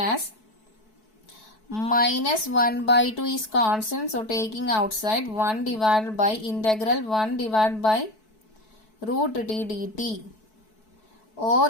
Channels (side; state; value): right; late; 4.6 ms